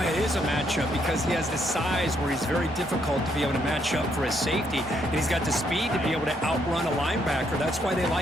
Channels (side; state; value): both; normal; correlation 0.73